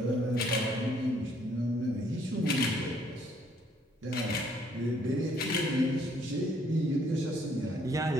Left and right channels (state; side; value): normal; both; correlation 0.65